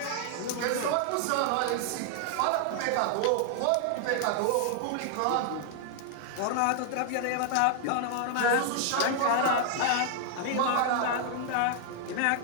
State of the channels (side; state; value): both; different; correlation 0.00